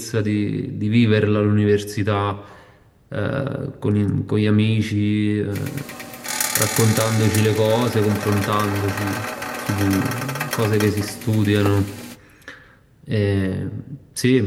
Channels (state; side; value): identical; both; correlation 1.00